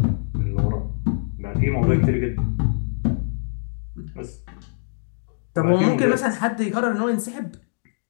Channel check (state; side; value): silent; right; digital silence